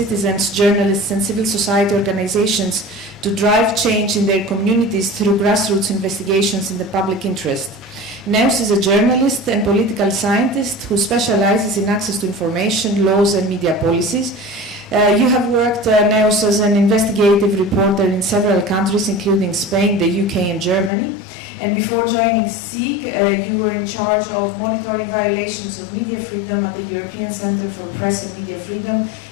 journalists and civil society organizations to drive change in their communities through grassroots investigations in the public interest. Enossi is a journalist and political scientist who specializes in access to information, laws and media policies. You have worked, Enossi, as an investigative reporter in several countries, including Spain, the UK and Germany. And before joining E.S.H.E.M, you were in charge of monitoring violations of media freedom at the European Centre for Press and Media Freedom,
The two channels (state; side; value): drops out; right; at 20.9 s